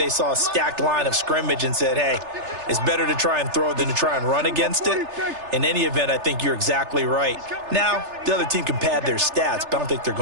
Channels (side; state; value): left; late; 3.3 ms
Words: saw a stacked line of scrimmage and said, hey, it's better to try and throw than to try and run against it. In any event, I think you're exactly right. Now, the other team can pad their stats, but I don't think they're